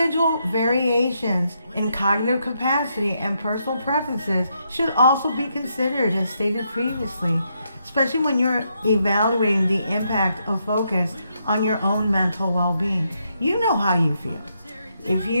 variations in cognitive capacity and personal preferences should also be considered, as stated previously, especially when you're evaluating the impact of focus on your own mental well-being. You know how you feel. If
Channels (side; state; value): both; inverted; correlation -0.79